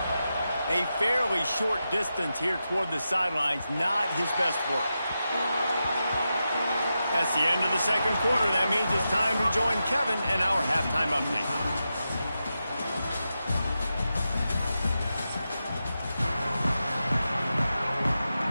A fairly short distance here toward the sidelines, not his best work. That's the end of the second quarter. That means it's time to join Kevin and our halftime update.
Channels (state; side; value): inverted; both; correlation -0.89